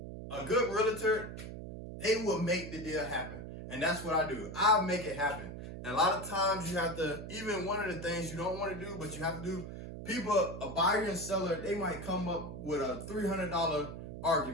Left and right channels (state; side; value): noise; right; hum, 9 dB below the sound